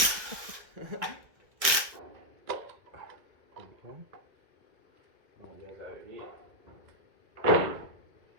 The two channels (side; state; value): left; late; 1.6 ms